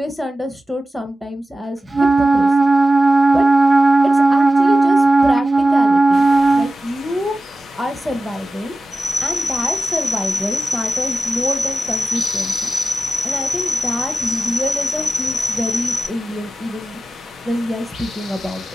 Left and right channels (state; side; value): normal; both; correlation 0.94